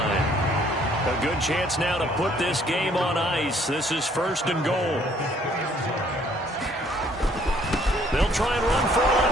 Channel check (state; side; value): normal; both; correlation 0.62